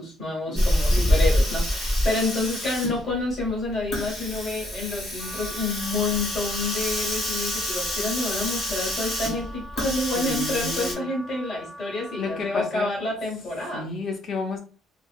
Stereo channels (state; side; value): normal; both; correlation 0.70